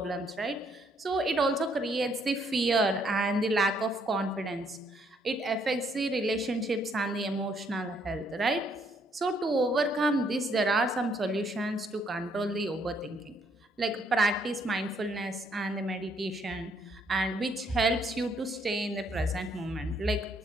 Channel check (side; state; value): both; normal; correlation 0.69